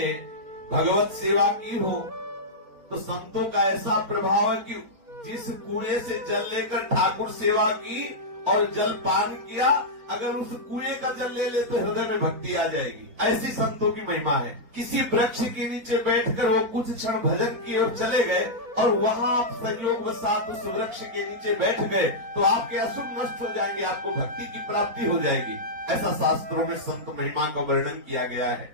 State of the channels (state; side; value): late; left; 4.2 ms